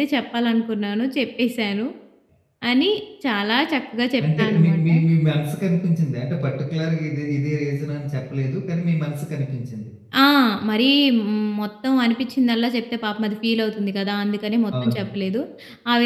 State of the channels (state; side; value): identical; both; correlation 1.00